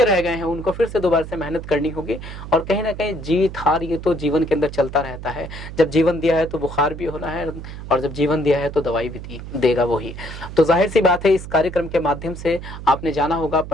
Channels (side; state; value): right; noise; hum, 11 dB below the sound